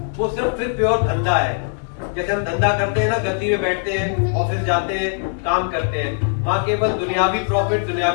वो सिर्फ फिर प्योर धंधा है। जैसे हम धंधा करते हैं ना, गद्दी में बैठते हैं, ऑफिस जाते हैं, काम करते हैं, वहां केवल दुनियावी प्रॉफिट,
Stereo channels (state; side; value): silent; right; 62 dB below the other